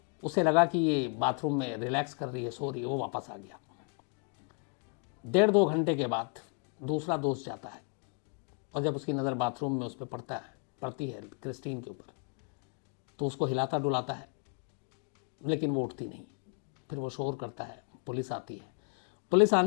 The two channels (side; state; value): right; quieter; 38.4 dB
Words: उसे लगा कि ये बाथरूम में रिलैक्स कर रही है, सो रही है। वो वापस आ गया। 1.5-2 घंटे के बाद दूसरा दोस्त जाता है और जब उसकी नज़र बाथरूम में उस पर पड़ती है क्रिस्टीन के ऊपर, तो उसको हिलाता डुलाता है, लेकिन वो उठती नहीं। फिर वो शोर करता है, पुलिस आती है। पुलिस